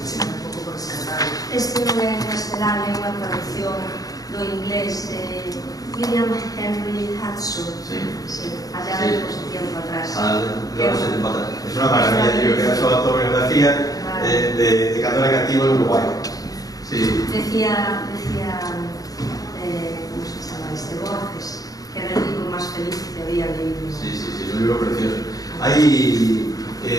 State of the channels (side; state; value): right; late; 0.18 ms